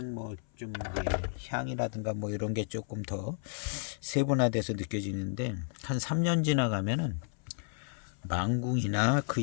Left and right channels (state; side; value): silent; right; 56 dB below the other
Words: 뭐 좀 예, 향이라든가 뭐 이런 게 조금 더 세분화돼서 느껴지는데 한 3년 지나가면은 망궁이나